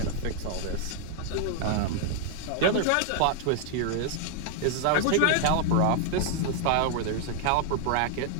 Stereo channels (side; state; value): both; different; correlation 0.00